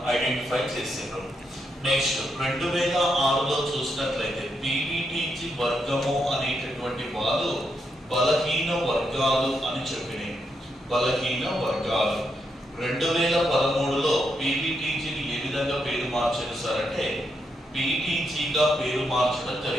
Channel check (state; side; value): normal; both; correlation 0.81